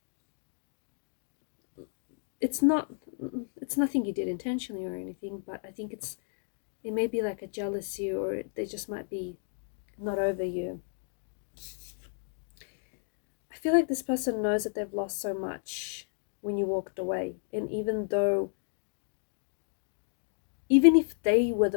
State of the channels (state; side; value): silent; right; digital silence